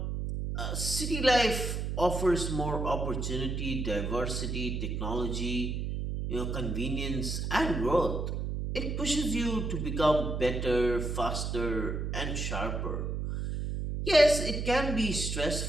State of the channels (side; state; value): right; noise; hum, 2 dB below the sound